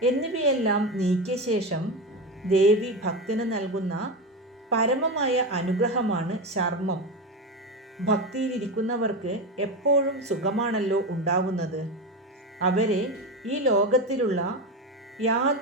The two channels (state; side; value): normal; both; correlation 0.19